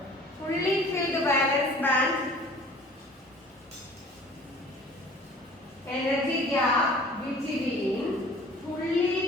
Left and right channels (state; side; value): normal; both; correlation 0.48